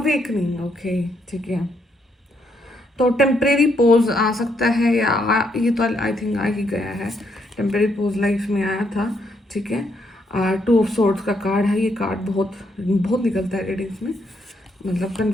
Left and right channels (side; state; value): both; normal; correlation 0.75